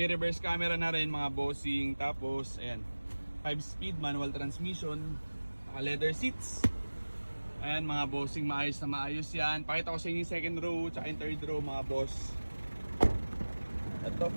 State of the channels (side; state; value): both; inverted; correlation -1.00